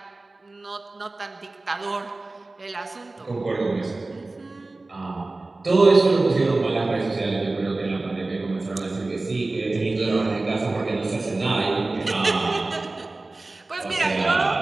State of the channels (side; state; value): left; quieter; 3.2 dB